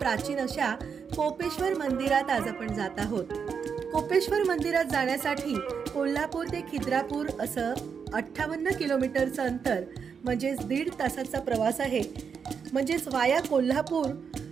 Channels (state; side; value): quieter; left; 6.4 dB